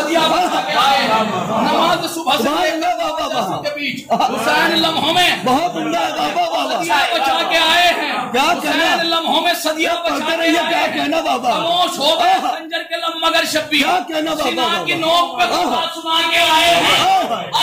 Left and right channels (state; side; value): identical; both; correlation 1.00